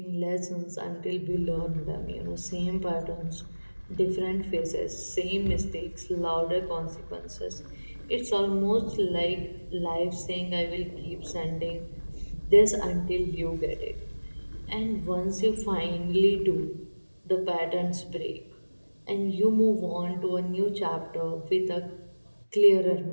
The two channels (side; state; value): both; inverted; correlation -1.00